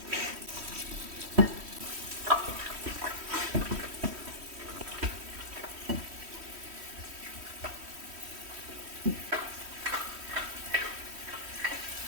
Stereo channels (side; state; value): left; late; 3.1 ms